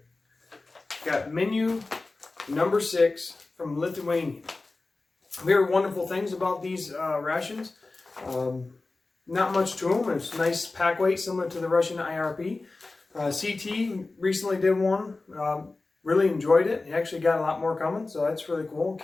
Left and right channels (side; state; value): right; quieter; 3.4 dB